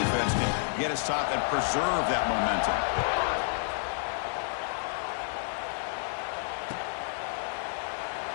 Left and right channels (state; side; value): silent; right; digital silence